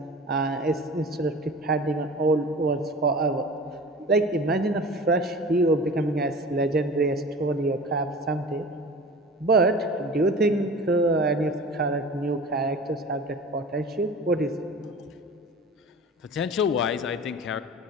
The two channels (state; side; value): normal; both; correlation 0.38